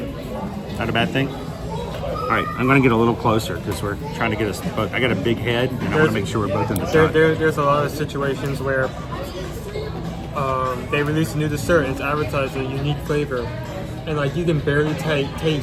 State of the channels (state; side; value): identical; both; correlation 1.00